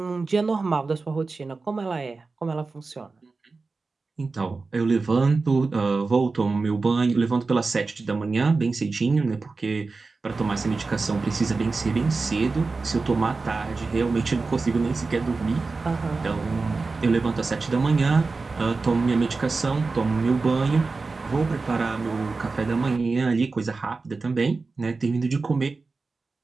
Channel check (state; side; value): quieter; left; 4.0 dB